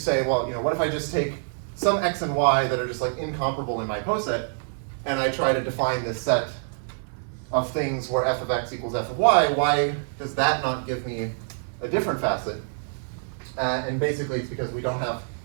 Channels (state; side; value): silent; left; 59 dB below the other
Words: well, what if I just take some x and y that are just like incomparable in my poset, and I try to define this set of things where f of x equals f of y? Why does that not give me a different facet? And basically, it's because we don't have,